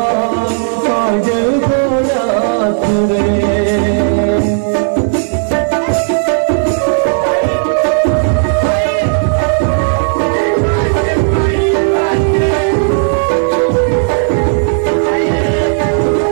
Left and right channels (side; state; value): left; silent; digital silence